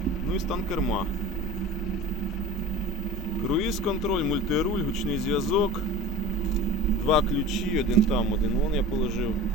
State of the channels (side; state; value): both; normal; correlation 0.38